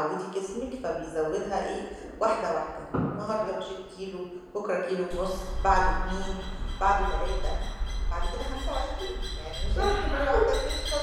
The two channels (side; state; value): both; identical; correlation 1.00